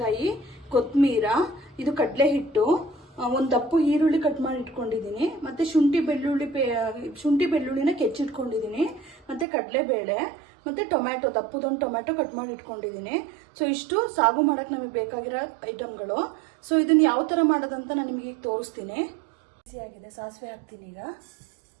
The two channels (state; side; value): drops out; left; at 9.5 s